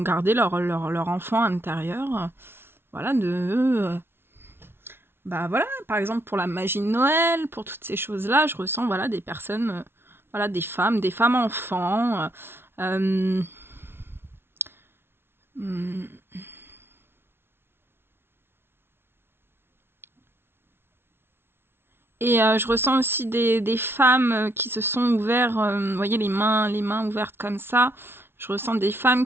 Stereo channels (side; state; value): left; late; 0.11 ms